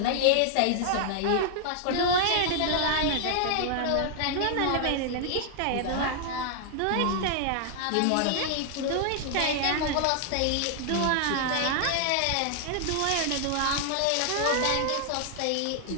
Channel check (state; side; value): different; both; correlation 0.00